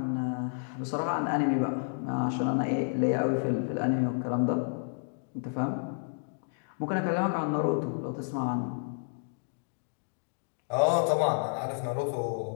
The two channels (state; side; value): silent; right; digital silence